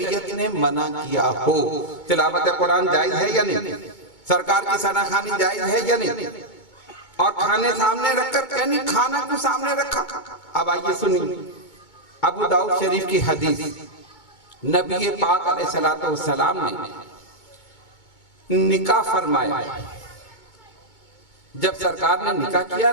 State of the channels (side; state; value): right; late; 2.2 ms